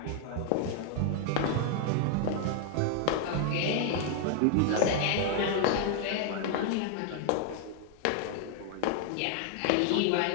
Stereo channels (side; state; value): both; different; correlation 0.00